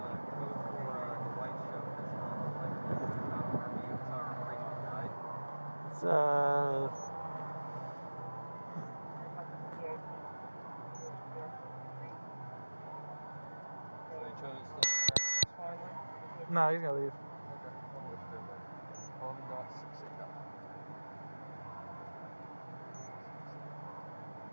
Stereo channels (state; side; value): inverted; both; correlation -1.00